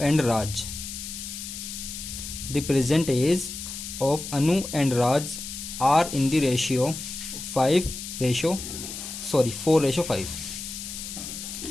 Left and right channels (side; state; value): left; noise; hiss, 8 dB below the sound